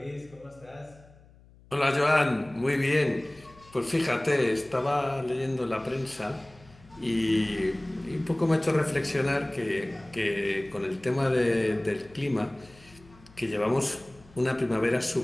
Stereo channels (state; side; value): noise; left; hum, 25 dB below the sound